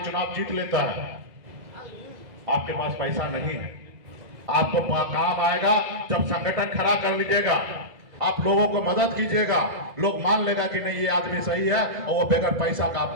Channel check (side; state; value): left; late; 2.0 ms